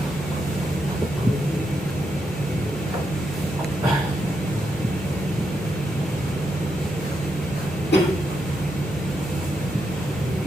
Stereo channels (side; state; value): both; normal; correlation 0.82